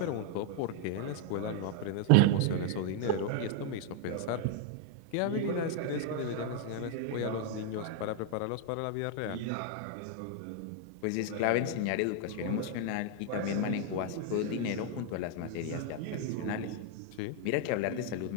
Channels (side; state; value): both; different; correlation 0.00